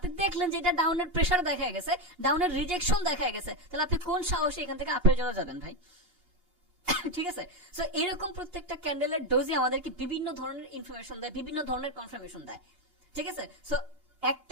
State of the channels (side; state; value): left; late; 2.8 ms